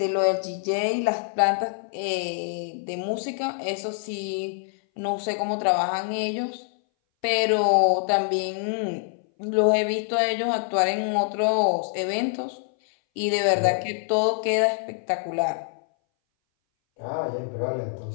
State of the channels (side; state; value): right; silent; 60 dB below the other